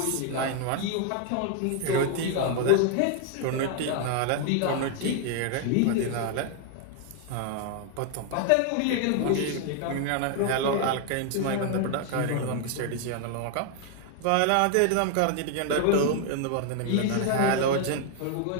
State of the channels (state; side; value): different; both; correlation 0.00